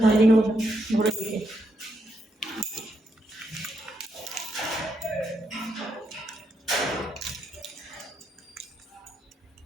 এদিকে বসে ঘুরে দিকে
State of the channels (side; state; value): both; normal; correlation 0.79